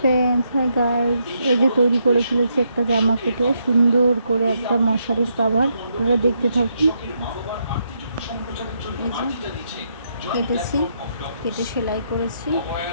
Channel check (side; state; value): both; inverted; correlation -0.78